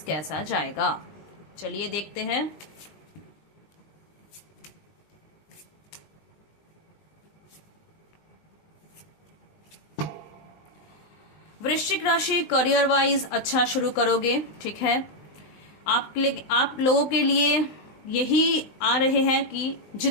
कैसा जाएगा, चलिए देखते हैं। वृश्चिक राशि करियर वाइज अच्छा शुरू करोगे, ठीक है। आप लोगों के लिए यही आ रहे हैं कि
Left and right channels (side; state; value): right; late; 20 ms